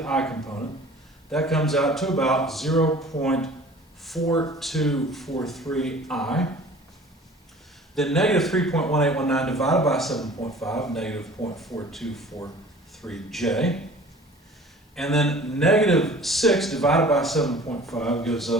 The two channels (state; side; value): normal; both; correlation 0.46